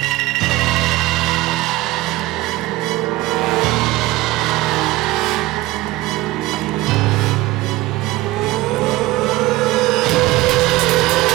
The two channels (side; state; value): left; quieter; 18.3 dB